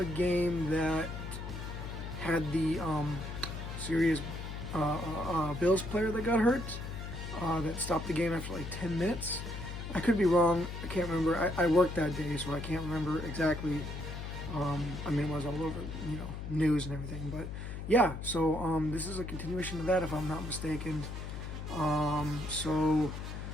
game that had the serious Bills player that got hurt that stopped the game after like 10 minutes. I could be wrong. I can't remember. I worked that day, so I can't remember exactly. It was all over, news and everything. But yeah, so this is a continuation of that, if I'm not mistaken. So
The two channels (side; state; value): left; noise; hum, 7 dB below the sound